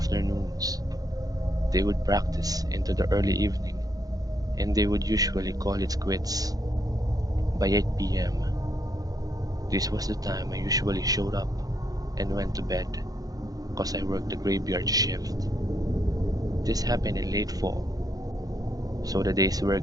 They would practice into the early evening, and they would usually call it quits by 8 p.m. This was the time I usually showed up and went to bed, cause I worked the graveyard shift. This happened in late fall, so the days were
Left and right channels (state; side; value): late; left; 0.18 ms